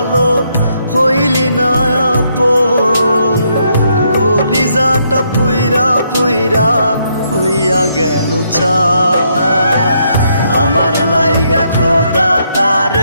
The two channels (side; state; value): both; inverted; correlation -0.75